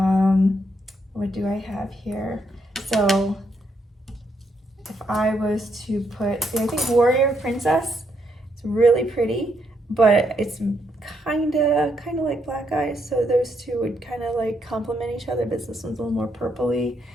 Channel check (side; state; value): both; normal; correlation 0.76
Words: what do I have here? So if I was to put, see, I think Warrior Princess, it's really pretty, but it's kind of like Black Eyes. So those two would kind of like complement each other, but this one's a little more purpley.